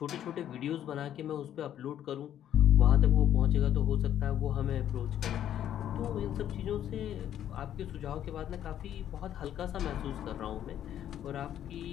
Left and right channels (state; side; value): quieter; right; 10.7 dB